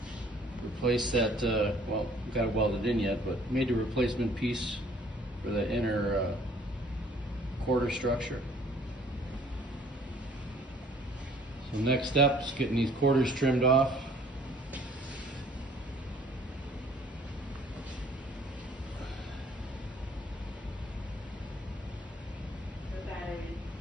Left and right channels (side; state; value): both; normal; correlation 0.56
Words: Replaced that, well, got it welded in yet, but made the replacement piece for the inner quarter structure. So next step is getting these quarters trimmed off.